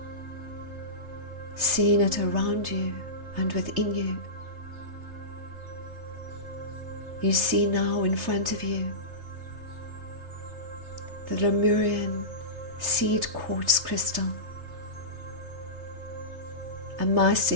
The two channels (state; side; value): late; left; 3.3 ms